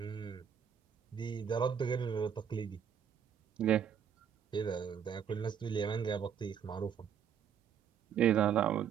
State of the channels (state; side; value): quieter; left; 8.1 dB